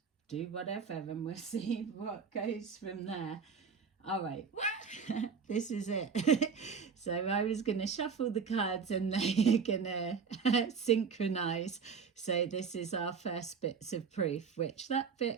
do whatever and we'll see what goes from there. All right, this is it. So I was going to shuffle the cards and they're going to synchronize. So this is our first bits of proof, which that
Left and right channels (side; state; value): left; quieter; 5.9 dB